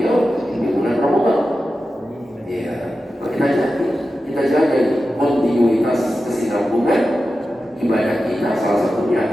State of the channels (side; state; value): both; normal; correlation 0.92